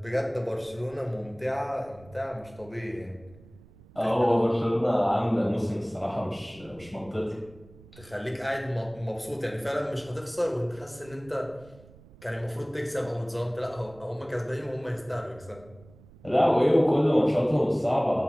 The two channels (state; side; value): noise; right; rumble, 23 dB below the sound